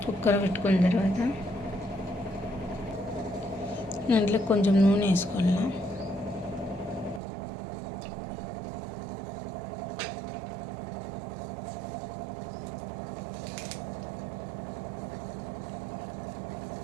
కుక్కర్ పెట్టుకున్న తర్వాత దాంట్లో కొంచెం నూనె వేసుకోవాలా.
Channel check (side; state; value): left; drops out; at 7.2 s